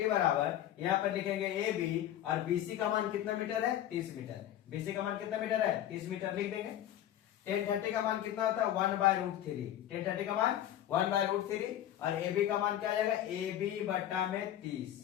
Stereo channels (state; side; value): quieter; right; 11.9 dB